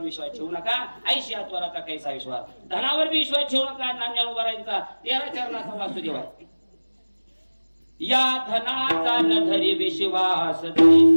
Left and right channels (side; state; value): both; inverted; correlation -1.00